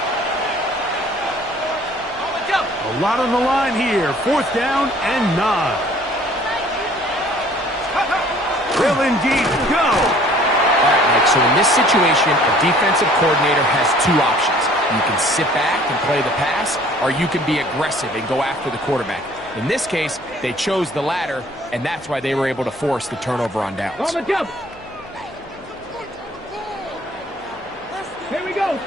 A lot on the line here. 4th down and 9. Will indeed go. All right, Mike, so in this situation, a defensive coordinator has 2 options. You can sit back and play the pass, or you can be aggressive and go after the quarterback. In this case, they chose the latter, and that's why they were able to force the turnover on downs. On the jump. Here we go.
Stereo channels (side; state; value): left; noise; hum, 26 dB below the sound